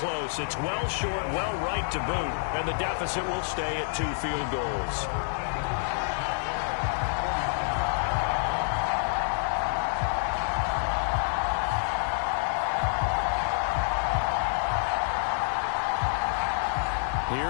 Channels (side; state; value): right; silent; 59 dB below the other